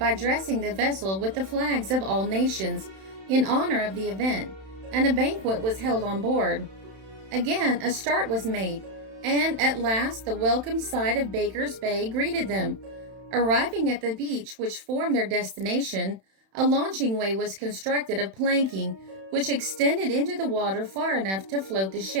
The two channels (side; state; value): left; late; 31 ms